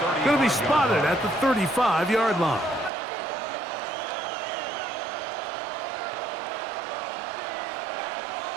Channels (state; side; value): drops out; left; at 2.9 s